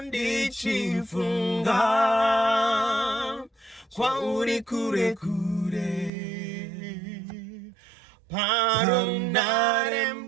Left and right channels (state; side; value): drops out; left; at 6.1 s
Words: ndichifunga kwa uri kure kure, parunare